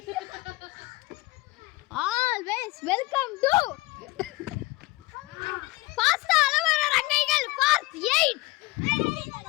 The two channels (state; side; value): quieter; right; 21.8 dB